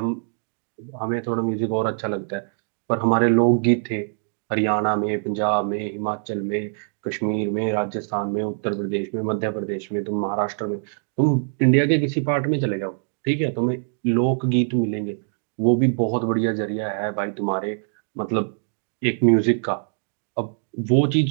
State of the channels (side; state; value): left; silent; digital silence